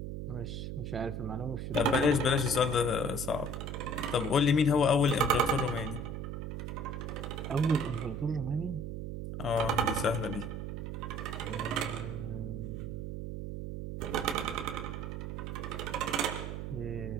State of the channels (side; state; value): right; noise; hum, 5 dB below the sound